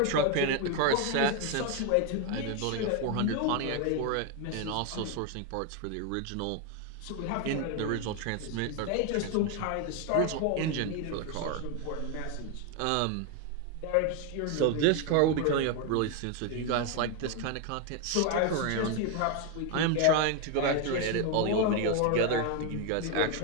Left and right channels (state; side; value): different; both; correlation 0.01